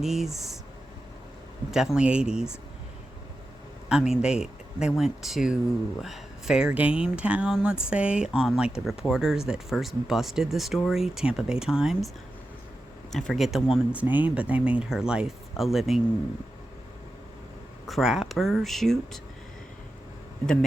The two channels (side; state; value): both; normal; correlation 0.91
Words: definitely 80s. I mean, they went to Fair Game Town, let's say, on like the reporters that first busted the story, Tampa Bay Times. I forget the woman's name, but they made her life a living crapper shoot. The